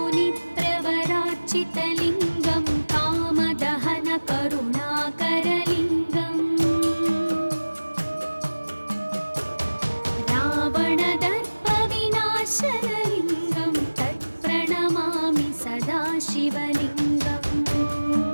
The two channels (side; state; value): both; inverted; correlation -1.00